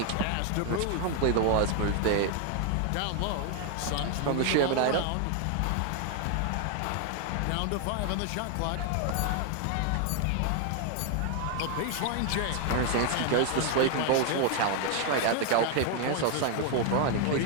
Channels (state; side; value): different; both; correlation 0.00